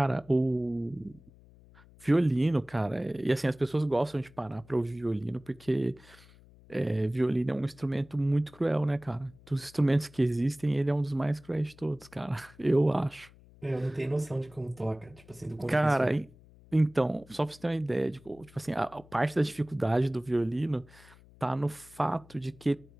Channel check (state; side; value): noise; left; hum, 24 dB below the sound